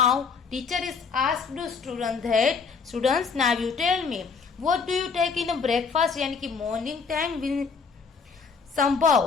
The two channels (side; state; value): right; quieter; 5.4 dB